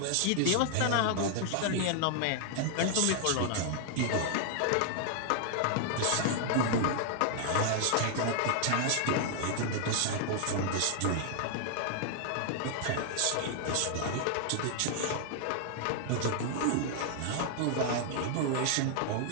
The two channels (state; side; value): different; both; correlation 0.00